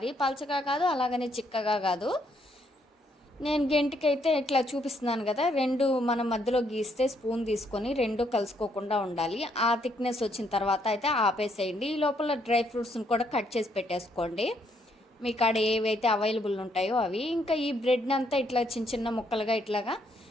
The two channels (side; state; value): both; normal; correlation 0.72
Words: పలచగా కాదు, అలాగనే చిక్కగా కాదు. నేను గెంటికైతే ఇట్లా చూపిస్తున్నాను కదా, రెండు మనం మధ్యలో గీస్తే స్పూన్ తీసుకొని రెండు కలుసుకోకుండా ఉండాలి. ఆ థిక్నెస్ వచ్చిన తర్వాత అయితే ఆపేసేయండి. ఈ లోపల డ్రై ఫ్రూట్స్ని కూడా కట్ చేసి పెట్టేసుకోండి, మీ కాడ ఏవైతే అవైలబుల్ ఉంటాయో అవి. ఇంకా ఈ బ్రెడ్ని అంతా ఇట్లా చిన్న చిన్న ముక్కలుగా ఇట్లాగా